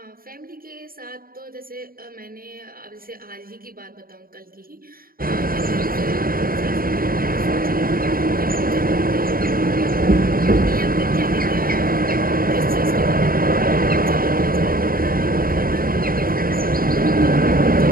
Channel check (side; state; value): left; late; 0.42 ms